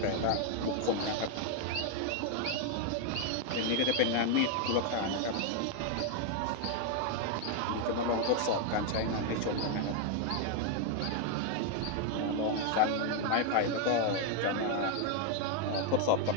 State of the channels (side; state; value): both; different; correlation 0.00